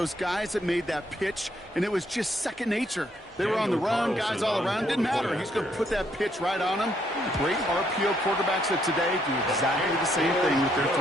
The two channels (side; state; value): both; normal; correlation 0.72